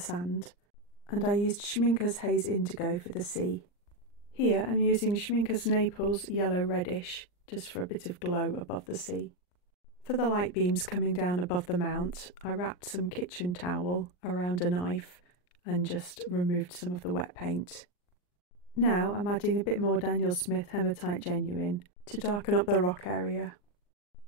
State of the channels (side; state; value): right; late; 39 ms